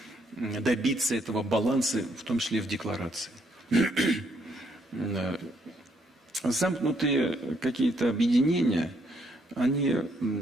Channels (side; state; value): both; normal; correlation 0.71